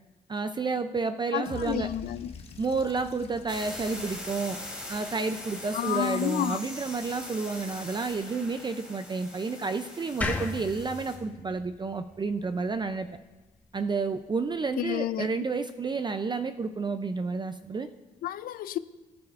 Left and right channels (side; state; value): both; normal; correlation 0.55